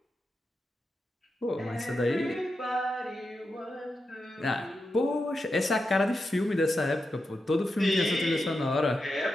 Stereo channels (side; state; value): both; normal; correlation 0.88